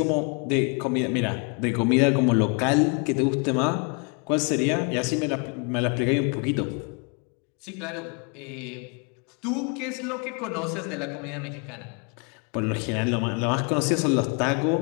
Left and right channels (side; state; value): right; quieter; 34.8 dB